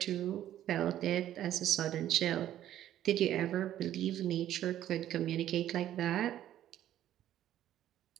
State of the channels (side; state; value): left; quieter; 12.1 dB